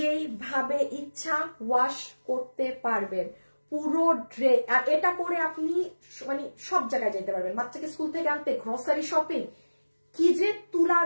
ইচ্ছা ওয়াশ করতে পারবেন পুরো ড্রেস। আর এটা পরে আপনি মানে সব জায়গায় যেতে পারবেন, বাচ্চাকে স্কুল থেকে আনতে, গ্রসারি শপিং, কি যে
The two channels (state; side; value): inverted; both; correlation -1.00